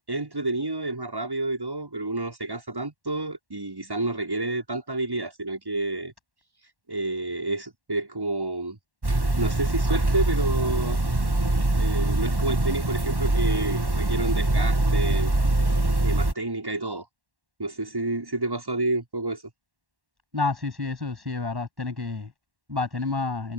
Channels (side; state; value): left; late; 1.1 ms